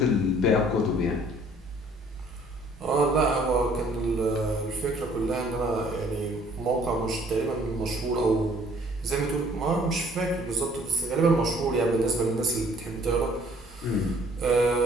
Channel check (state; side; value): normal; both; correlation 0.58